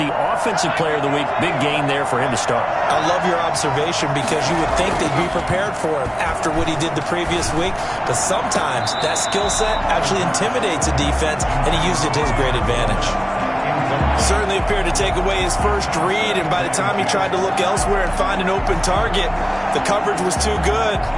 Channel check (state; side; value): identical; both; correlation 1.00